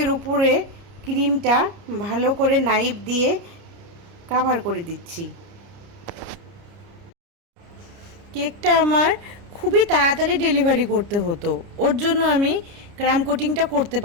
উপরে ক্রিমটা ভালো করে নাইফ দিয়ে কভার করে দিচ্ছি। কেকটা আমার খুবই তাড়াতাড়ি ডেলিভারি করতে হতো, ওর জন্য আমি ক্রাম কোটিংটা করতে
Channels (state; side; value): late; left; 30 ms